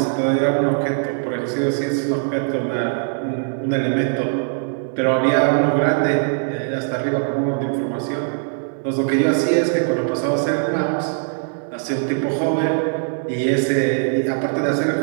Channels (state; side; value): silent; left; 63 dB below the other